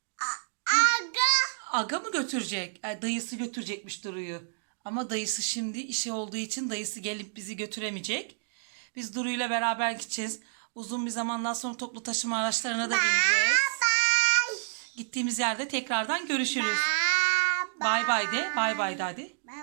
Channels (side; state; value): left; silent; digital silence